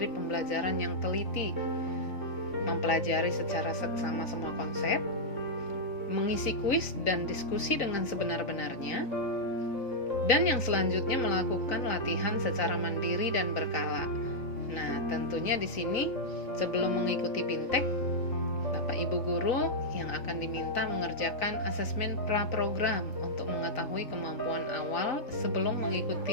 pembelajaran yang teliti, mempelajari secara seksama semua konsep, mengisi kuis dan diskusi dengan sebenar-benarnya, dan yang selanjutnya melakukan latihan secara mandiri dan berkala. Nah, tentunya di sini sebelum mengikuti BIMTEK, Bapak Ibu guru yang akan diminta mengerjakan asesmen pra-program untuk mengetahui kemampuan awal sebelum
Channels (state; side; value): late; right; 3.9 ms